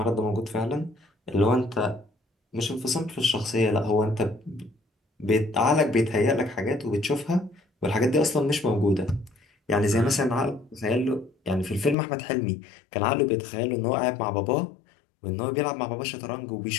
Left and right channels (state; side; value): drops out; right; at 12.0 s